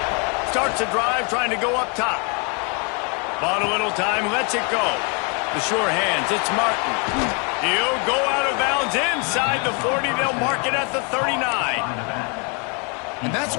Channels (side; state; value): right; quieter; 35.0 dB